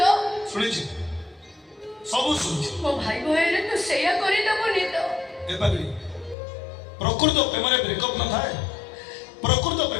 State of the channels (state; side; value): drops out; right; at 6.4 s